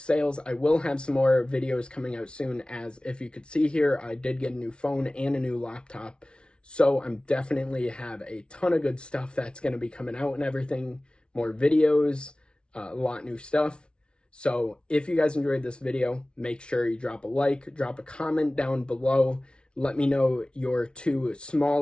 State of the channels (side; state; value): right; late; 0.057 ms